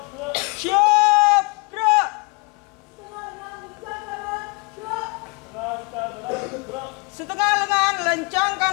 Setengah lengan lencang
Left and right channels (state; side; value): quieter; right; 31.3 dB